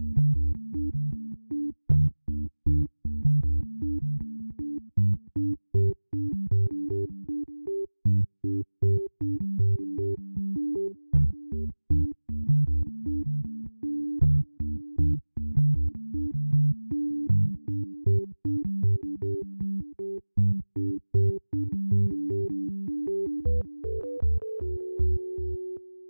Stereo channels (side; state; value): both; inverted; correlation -1.00